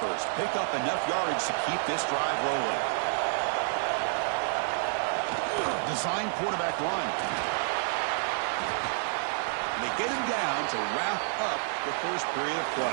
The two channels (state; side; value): silent; left; 57 dB below the other